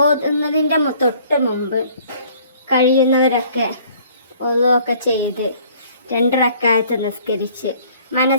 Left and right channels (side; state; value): both; inverted; correlation -0.56